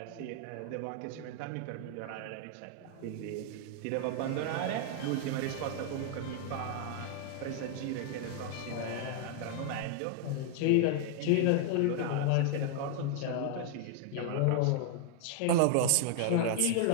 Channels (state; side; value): different; both; correlation 0.00